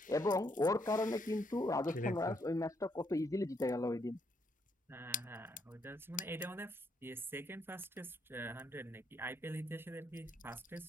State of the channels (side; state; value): both; normal; correlation 0.74